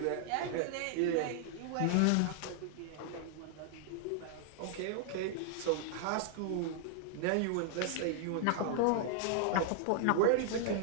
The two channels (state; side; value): different; both; correlation -0.01